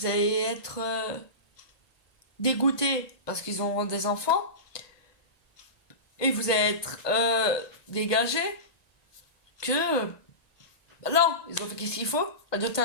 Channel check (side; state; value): right; late; 1.2 ms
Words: être dégoûté parce qu'ils ont des enfants, et vous allez être dégagé que non, ils ont fait qu'est-ce qu'il faut, adopter